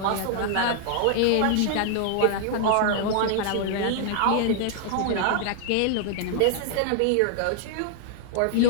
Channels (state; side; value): different; both; correlation 0.00